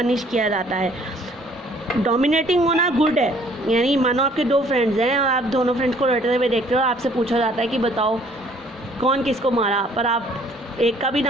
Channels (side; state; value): both; normal; correlation 0.59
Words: किया जाता है। डोमिनेटिंग होना गुड है, यानी मानो आपके दो फ्रेंड्स हैं और आप दोनों फ्रेंड्स को लड़ते हुए देखते हो और आपसे पूछा जाता है कि बताओ कौन किसको मारा, पर आप एक का भी